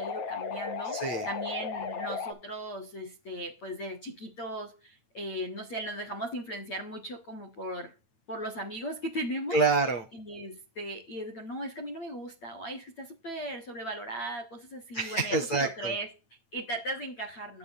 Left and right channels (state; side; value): late; right; 9.0 ms